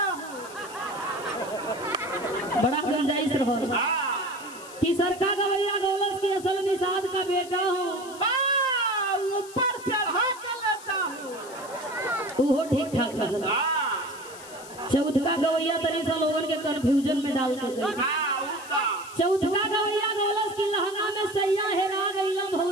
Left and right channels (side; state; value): left; noise; hiss, 17 dB below the sound